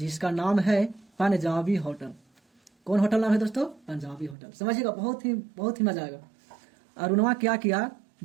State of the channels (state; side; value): drops out; left; at 4.4 s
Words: नाम है पंजाबी होटल। कौन होटल नाम है दोस्तों? पंजाबी होटल। समझिएगा, बहुत ही मजा आएगा। अरुणवा क्या किया,